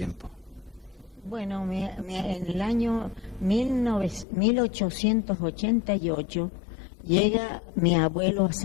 Bueno, en el año 1888 llega mi abuelo a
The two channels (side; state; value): right; drops out; at 4.2 s